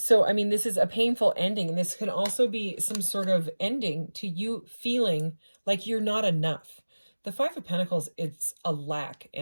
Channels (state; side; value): inverted; both; correlation -1.00